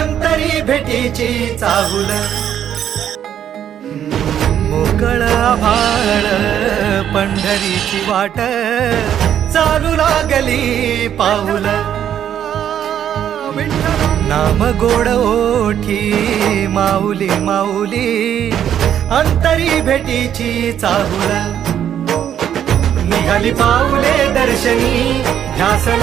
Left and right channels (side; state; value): left; quieter; 9.8 dB